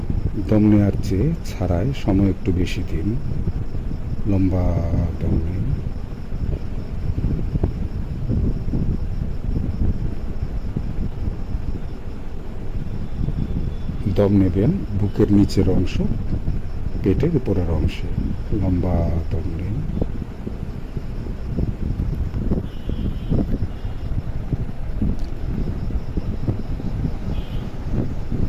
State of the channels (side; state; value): both; identical; correlation 1.00